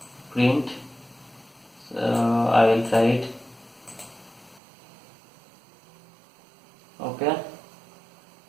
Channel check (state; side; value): drops out; left; at 4.6 s